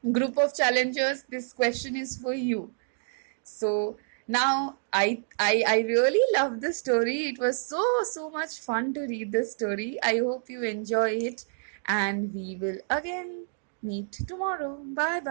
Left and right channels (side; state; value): left; silent; digital silence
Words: Group of challengers, this question is for you. So now I really love the story. It was so much fun to read the story. I hope you enjoy it and we will again meet tomorrow. Bye